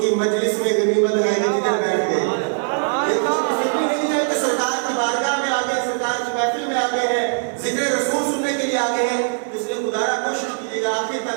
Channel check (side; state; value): left; silent; digital silence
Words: کی مجلس میں غنیمت ہے کہ کدھر بیٹھ گئے۔ یہ خوش نصیبی نہیں ہے کہ سرکار کی بارگاہ میں آگے، سرکار کی محفل میں آگے ہیں، ذکر رسول سننے کے لیے آگے ہیں، اس لیے خدا را کوشش کیجیے گا آخر